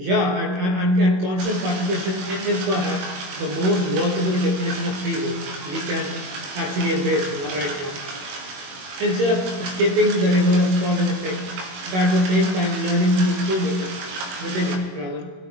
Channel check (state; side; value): late; left; 22 ms